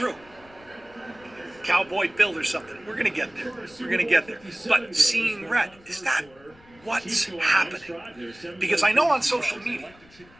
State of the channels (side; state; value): left; noise; rumble, 26 dB below the sound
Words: Cowboy Bill or something. We're going to get there. We're going to get there. But seeing red, is that what's happening? Because I know on social media.